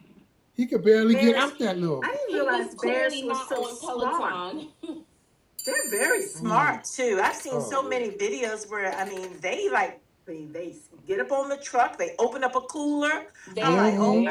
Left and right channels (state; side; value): identical; both; correlation 1.00